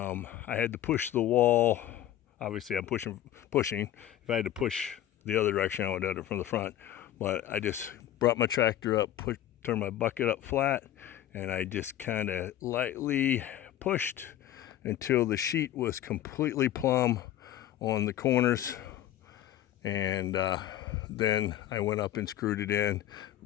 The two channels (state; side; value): quieter; right; 12.3 dB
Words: had to push the wall. Obviously I'm pushing. If I had to push the other direction, I would have done it from the front. But I just brought my tractor up, turned my bucket up flat, and I just kind of lightly pushed until the sheet was completely plumb on the corners. And then I went up and screwed it in,